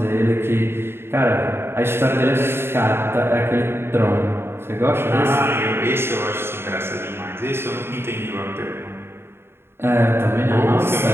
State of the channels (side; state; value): left; late; 0.11 ms